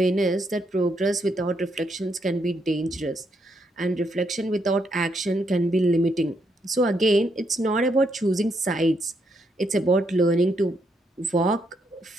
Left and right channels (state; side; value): normal; both; correlation 0.77